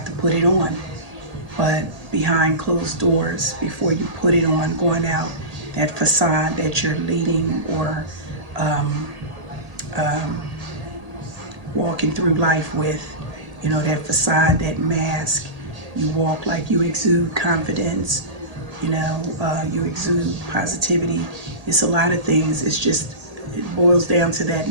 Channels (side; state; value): left; late; 1.8 ms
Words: to put it on. But behind closed doors, before you put it on, going out, that facade that you're leading or um, um, walking through life with, you know, that facade, that mask, you walk like you exude confidence, you know, you exude positivity. It's a lot of things. It's just, it boils down to that